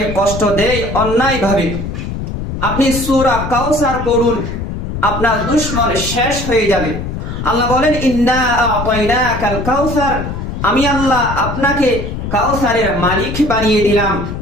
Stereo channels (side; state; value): left; noise; rumble, 6 dB below the sound